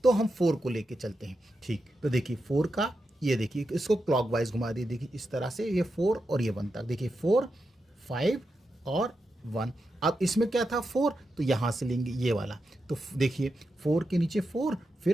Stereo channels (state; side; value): normal; both; correlation 0.88